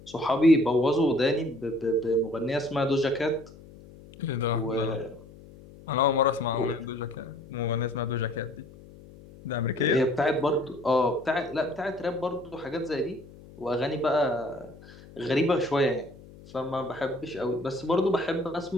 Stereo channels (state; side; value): noise; left; hum, 20 dB below the sound